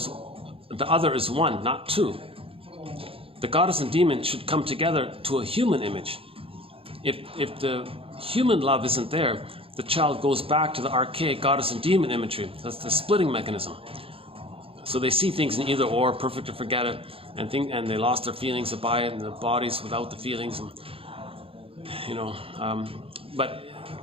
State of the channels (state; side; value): late; left; 0.27 ms